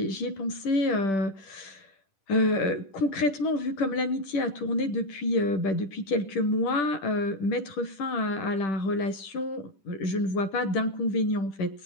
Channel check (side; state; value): right; late; 10 ms